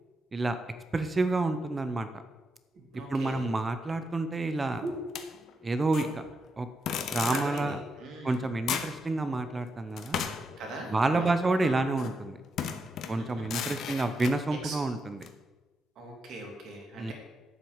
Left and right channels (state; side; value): normal; both; correlation 0.84